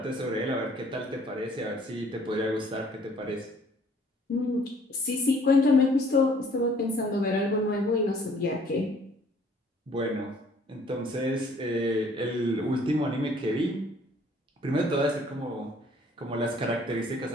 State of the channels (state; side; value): normal; both; correlation 0.58